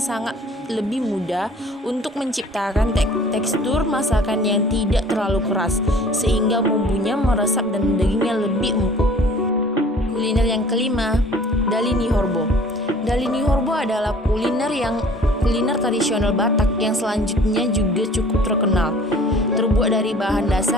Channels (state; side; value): normal; both; correlation 0.50